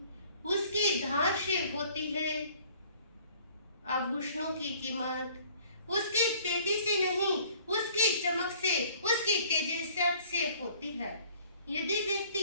उसकी धार से होती है। आभूषणों की कीमत उसकी पेटी से नहीं, उसकी चमक से, उसकी तेजस्वी से होती है। यदि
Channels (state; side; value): inverted; both; correlation -0.55